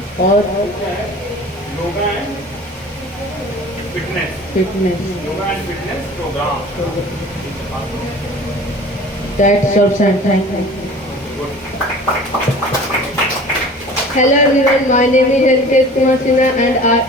और fitness program. That's all, and thank you. Hello everyone, my name is Ankesh Kumar Sinha and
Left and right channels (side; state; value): both; normal; correlation 0.43